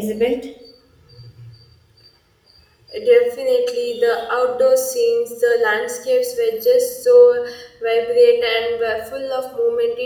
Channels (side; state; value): both; identical; correlation 1.00